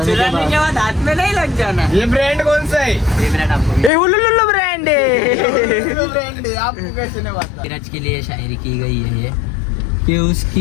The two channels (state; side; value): drops out; right; at 3.9 s